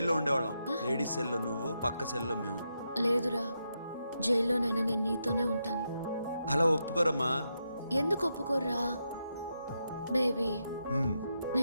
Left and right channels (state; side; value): inverted; both; correlation -0.84